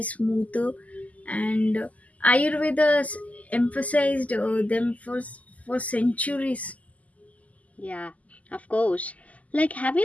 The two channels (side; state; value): right; late; 0.073 ms